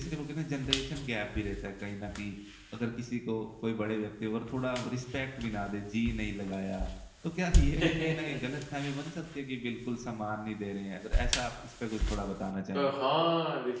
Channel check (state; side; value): identical; both; correlation 1.00